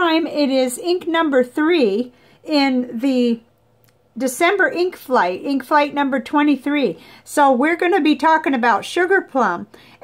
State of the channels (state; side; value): identical; both; correlation 1.00